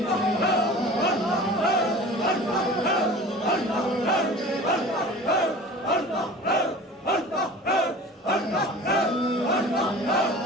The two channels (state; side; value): normal; both; correlation 0.40